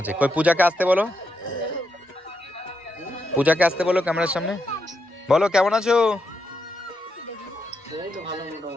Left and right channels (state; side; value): normal; both; correlation 0.83